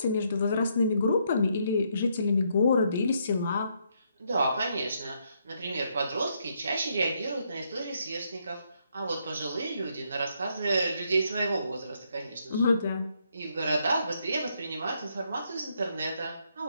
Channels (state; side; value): inverted; both; correlation -0.75